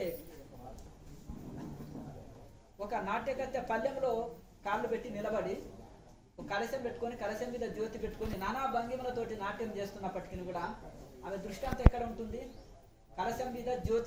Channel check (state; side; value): identical; both; correlation 1.00